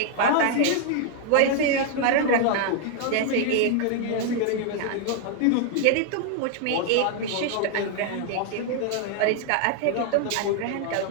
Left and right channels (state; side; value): different; both; correlation 0.00